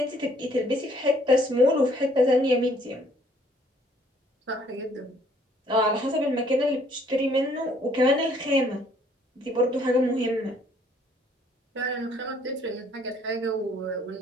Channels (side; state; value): both; normal; correlation 0.62